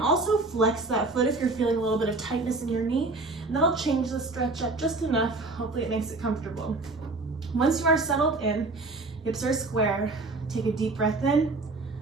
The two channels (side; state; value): left; quieter; 3.3 dB